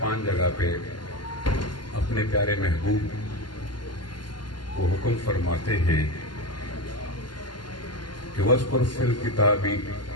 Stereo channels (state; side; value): late; right; 0.71 ms